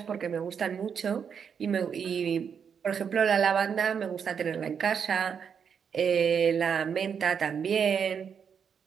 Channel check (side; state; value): left; quieter; 7.1 dB